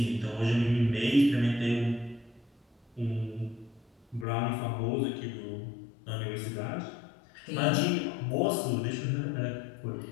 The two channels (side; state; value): right; drops out; at 4.2 s